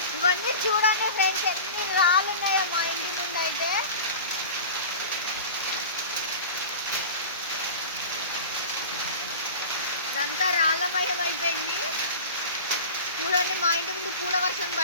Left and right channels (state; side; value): inverted; both; correlation -0.34